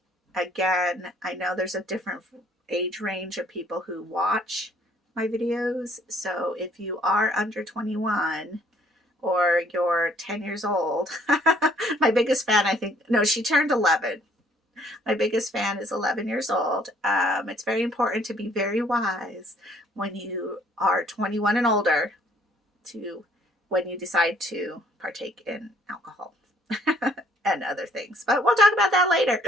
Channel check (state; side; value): normal; both; correlation 0.61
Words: Again, I know there's a different age range of people who watch my videos. So if you are under 21 or you're 10 years old, my biggest fan, she turned 11. My biggest fan is 11 years old. It's very important to be very wise when you are 21 and older when you decide to partake in alcohol and other things. But we'll talk about that later.